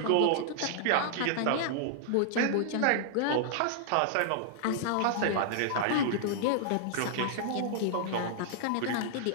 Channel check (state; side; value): different; both; correlation -0.01